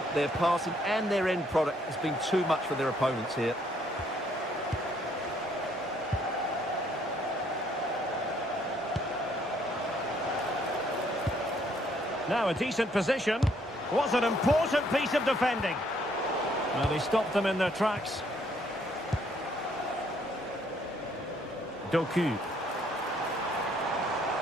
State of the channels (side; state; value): both; normal; correlation 0.67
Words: their passing and their end product has been too much for their opponents here. Now a decent position. Was an important piece of defending. Well, they stopped them in their tracks. Doku.